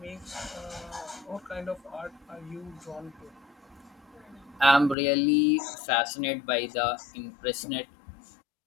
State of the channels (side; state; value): right; drops out; at 5.0 s